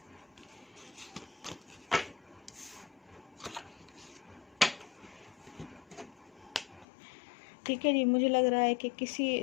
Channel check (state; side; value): drops out; right; at 6.9 s